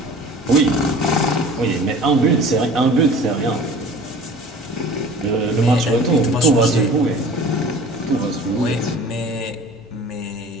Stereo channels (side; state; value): both; normal; correlation 0.43